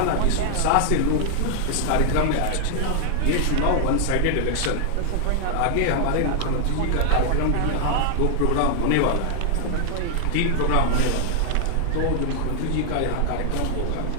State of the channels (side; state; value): both; different; correlation 0.00